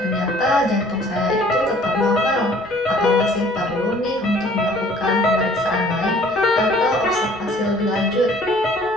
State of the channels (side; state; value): both; normal; correlation 0.54